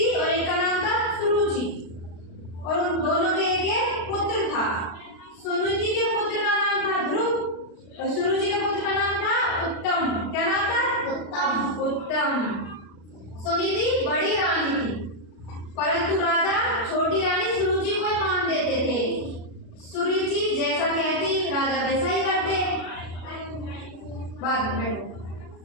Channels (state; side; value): late; right; 36 ms